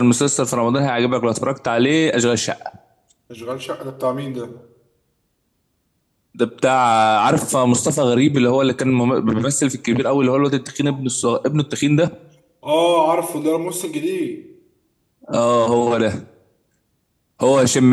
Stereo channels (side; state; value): both; identical; correlation 1.00